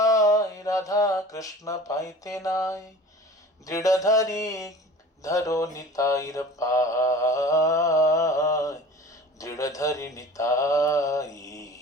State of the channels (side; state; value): both; normal; correlation 0.41